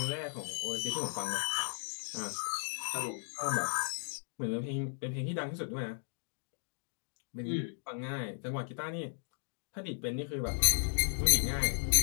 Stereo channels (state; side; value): silent; right; digital silence